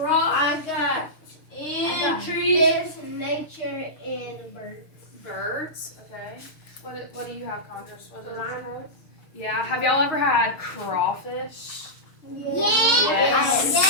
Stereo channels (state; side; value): late; right; 6.6 ms